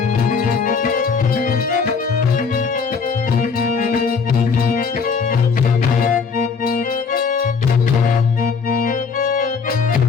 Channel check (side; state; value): right; quieter; 5.4 dB